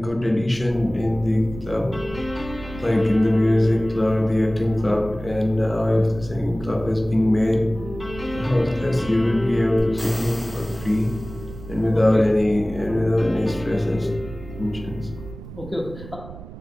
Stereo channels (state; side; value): noise; right; rumble, 14 dB below the sound